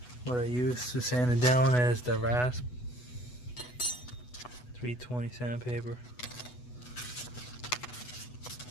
What I use to sand it down is the rasp 320 sandpaper,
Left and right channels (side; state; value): right; late; 8.1 ms